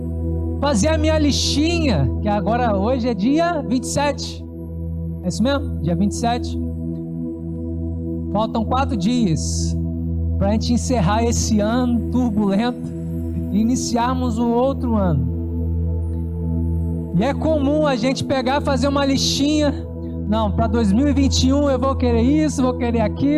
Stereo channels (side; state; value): both; identical; correlation 1.00